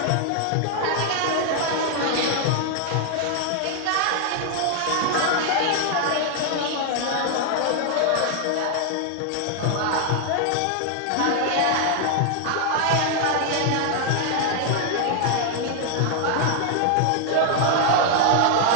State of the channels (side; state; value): both; different; correlation 0.00